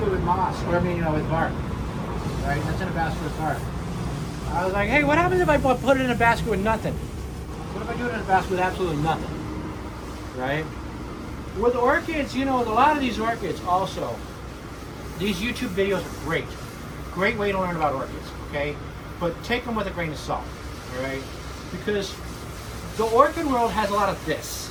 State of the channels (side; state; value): both; identical; correlation 1.00